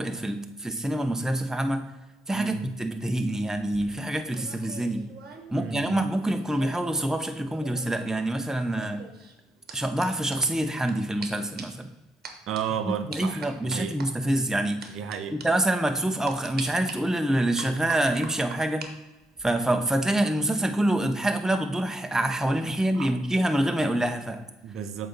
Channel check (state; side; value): normal; both; correlation 0.83